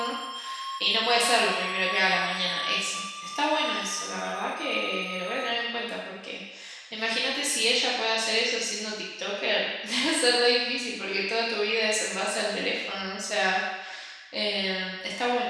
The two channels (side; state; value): both; identical; correlation 1.00